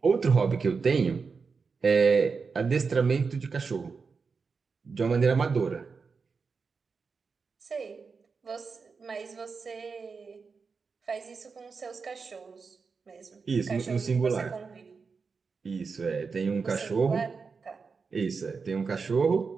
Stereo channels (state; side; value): quieter; left; 5.1 dB